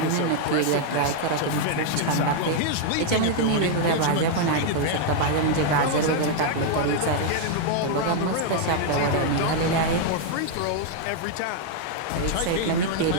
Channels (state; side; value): different; both; correlation 0.00